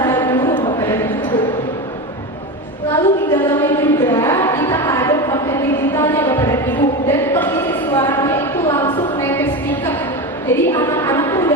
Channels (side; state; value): both; normal; correlation 0.21